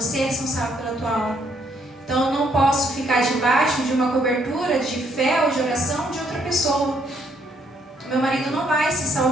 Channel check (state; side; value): normal; both; correlation 0.70